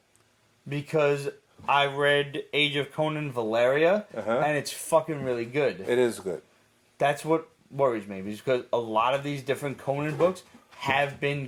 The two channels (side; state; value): both; identical; correlation 1.00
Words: Because I read Age of Conan Valeria, and it's fucking really good. It is good. That's what worries me, because a lot of these different Conan books have been